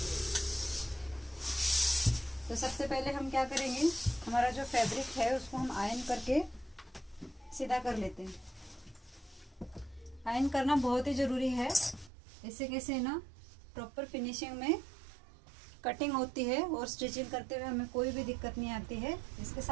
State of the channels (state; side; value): drops out; left; at 12.1 s